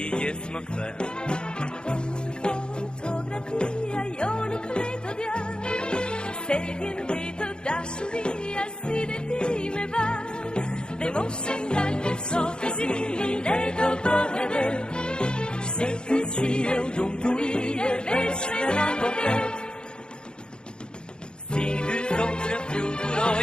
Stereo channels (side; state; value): right; late; 0.049 ms